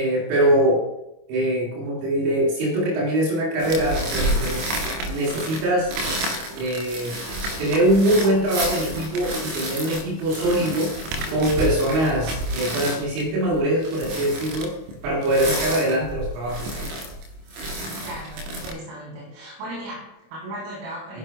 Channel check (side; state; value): left; late; 25 ms